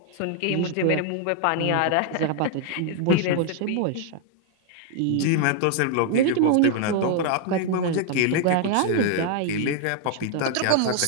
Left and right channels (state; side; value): different; both; correlation 0.00